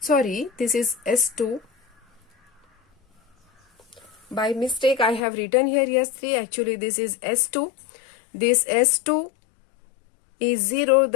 is S2. By mistake I have written here S3, actually this is S2. This S2 is 0,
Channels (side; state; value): right; drops out; at 5.2 s